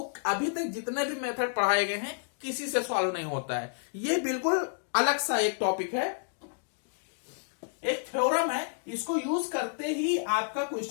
अभी तक जितने भी मेथड पढ़ाए गए हैं किसी से सॉल्व नहीं होता है। ये बिल्कुल अलग सा एक टॉपिक है, एक थ्योरम है, इसको यूज करते ही आपका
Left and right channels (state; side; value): silent; right; digital silence